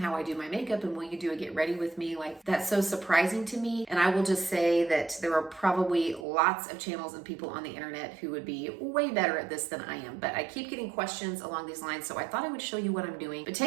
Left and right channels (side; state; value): left; drops out; at 6.2 s